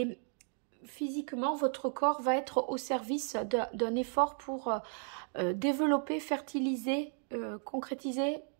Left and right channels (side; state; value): left; silent; 55 dB below the other